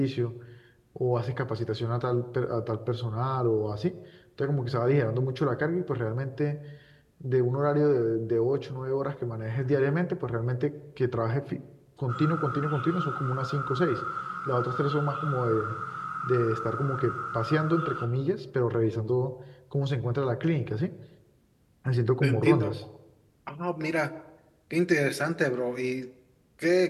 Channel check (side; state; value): both; identical; correlation 1.00